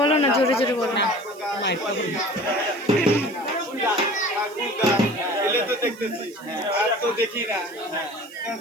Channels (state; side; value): noise; right; hiss, 24 dB below the sound